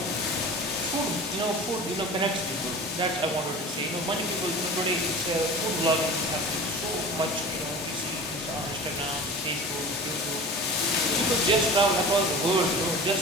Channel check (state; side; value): normal; both; correlation 0.37